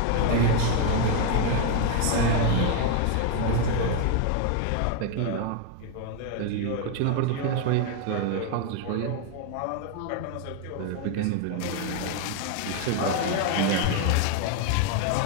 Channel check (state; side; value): different; both; correlation 0.00